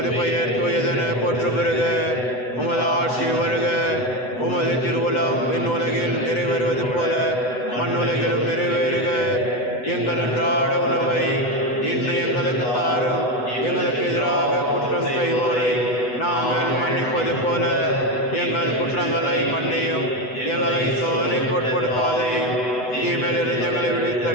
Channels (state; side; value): late; right; 8.0 ms